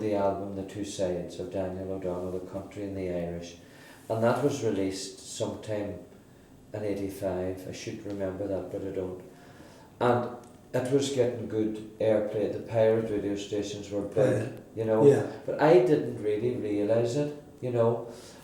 album The Two Sides of Daniel O'Donnell, the country and the Irish, and that was released sometime in 85. I should remember that, but I don't. And it was getting good airplay. The pirate radio stations were big, you know. Yeah. But I didn't really realise it, you know,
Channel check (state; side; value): identical; both; correlation 1.00